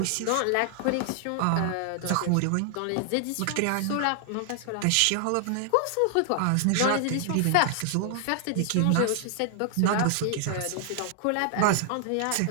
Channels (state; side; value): different; both; correlation 0.00